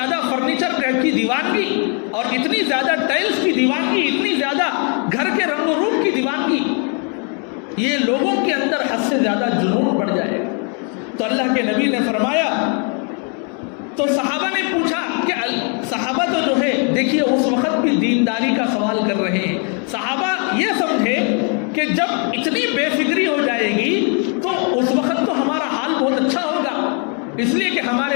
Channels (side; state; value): right; quieter; 38.9 dB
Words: فرنیچر کی دیوانگی، اور اتنی زیادہ ٹائلز کی دیوانگی، اتنی زیادہ گھر کے رنگ و روپ کی دیوانگی، یہ لوگوں کے اندر حد سے زیادہ جنون بڑھ جائے گا۔ تو اللہ کے نبی نے فرمایا، تو صحابہ نے پوچھا کہ صحابہ تو جو ہے دیکھیے اس وقت بھی دینداری کا سوال کر رہے ہیں، صحابہ یہ سمجھے کہ جب اتنی بے فکری ہو جائے گی تو اس وقت تو ہمارا حال بہت اچھا ہوگا، اس لیے کہ